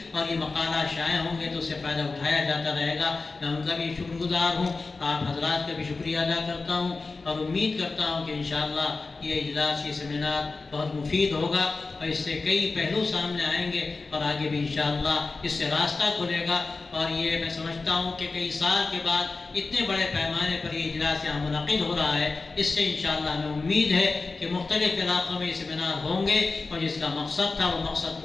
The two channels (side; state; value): right; quieter; 3.9 dB